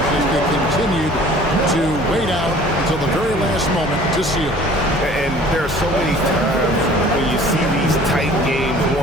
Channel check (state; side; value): normal; both; correlation 0.49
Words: as they continued to wait out until the very last moment to seal. And there are so many times when you see these tight games